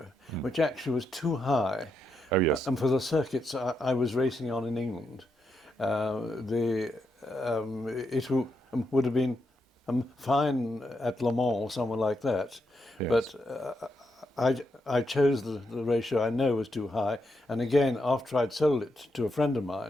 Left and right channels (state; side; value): normal; both; correlation 0.82